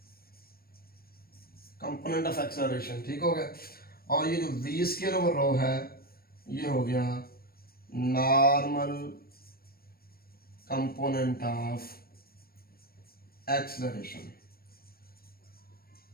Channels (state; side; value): late; right; 0.44 ms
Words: component of acceleration. ठीक हो गया, और ये जो v स्क्वायर ओवर रो है ये हो गया नॉर्मल कंपोनेंट ऑफ एक्सेलरेशन।